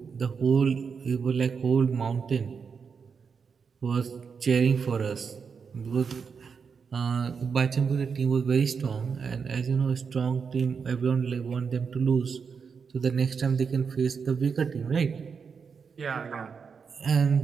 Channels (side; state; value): left; quieter; 5.9 dB